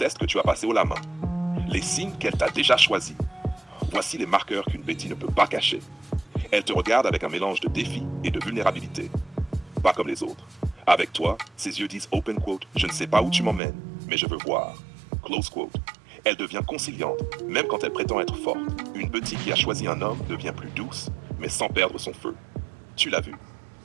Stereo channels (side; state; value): left; drops out; at 13.6 s